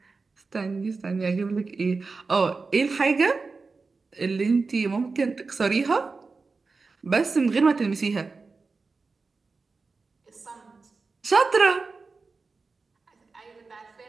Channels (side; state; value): left; quieter; 4.2 dB